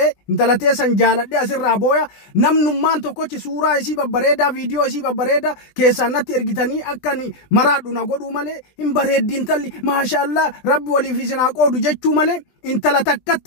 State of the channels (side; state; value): right; late; 20 ms